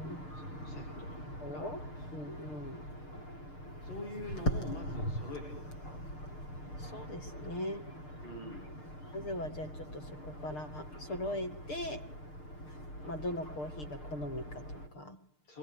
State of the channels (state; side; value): late; right; 6.6 ms